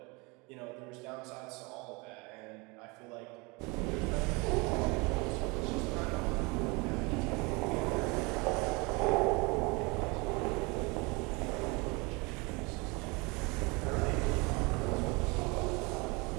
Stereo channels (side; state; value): left; quieter; 27.3 dB